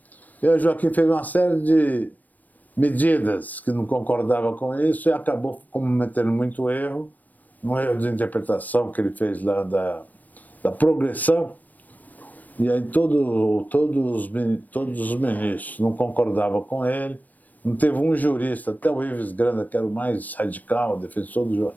E o Joaquim fez uma série de medidas que não concordava com isso e acabou cometendo muito erro, um erro de interpretação que ele fez lá da progressão. E aí todos os ministros não concordavam com ele. Não teve um jurista, até o Ives Granda, que era o mais radical, defensor do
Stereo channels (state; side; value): late; right; 0.082 ms